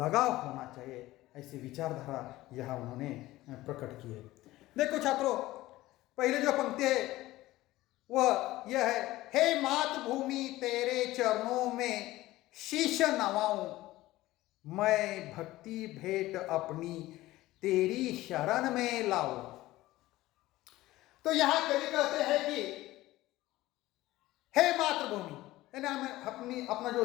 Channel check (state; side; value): quieter; right; 17.1 dB